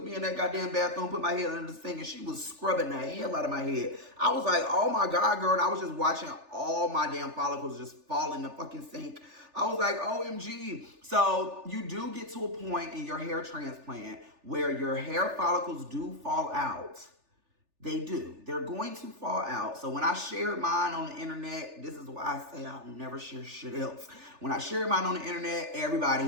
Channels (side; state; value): left; late; 3.4 ms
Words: me in that goddamn bathroom, put my head under the sink, and she was scrubbing the hell out of my head. I was like, oh my God, girl. And I was just watching all my damn follicles just fall in the fucking sink. I was like, OMG. So you do get to a point in your hair transplant where your hair follicles do fall out. They do. They're going to fall out. So when I shared mine on the internet, this is why I say I'll never share shit else. When I shared mine on the internet, everybody,